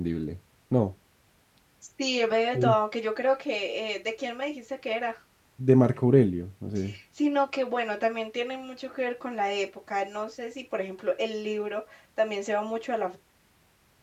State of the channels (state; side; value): identical; both; correlation 1.00